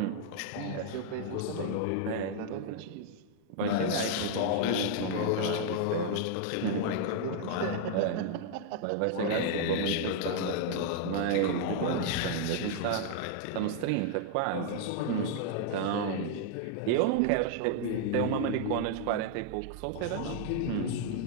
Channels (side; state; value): both; different; correlation 0.00